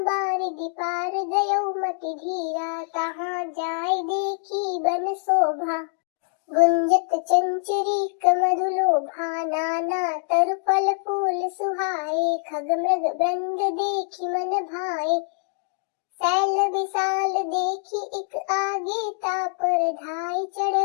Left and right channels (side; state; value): right; silent; digital silence